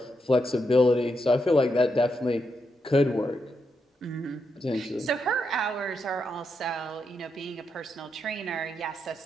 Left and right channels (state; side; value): normal; both; correlation 0.83